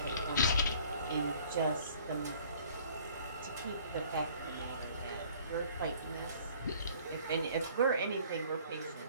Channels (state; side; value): inverted; both; correlation -0.54